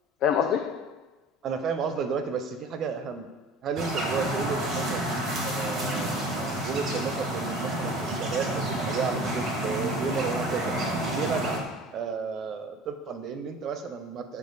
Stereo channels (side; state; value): both; normal; correlation 0.42